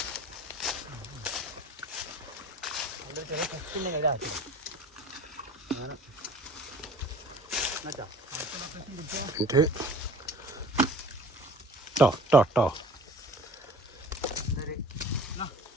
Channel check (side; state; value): both; normal; correlation 0.46